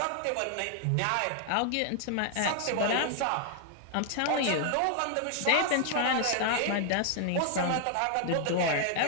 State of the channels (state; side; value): different; both; correlation 0.00